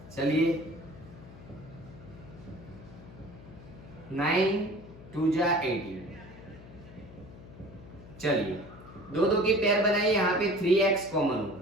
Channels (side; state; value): left; noise; hum, 17 dB below the sound